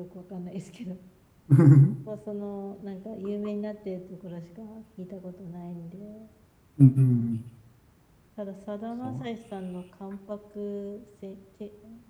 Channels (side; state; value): both; identical; correlation 1.00